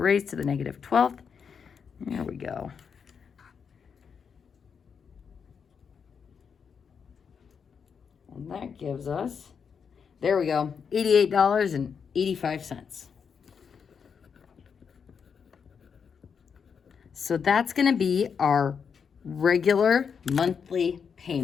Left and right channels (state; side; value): quieter; right; 6.5 dB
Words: to the negative 12th. There we go. And that gives us, there we go, $88.85. So that's going to be our regular monthly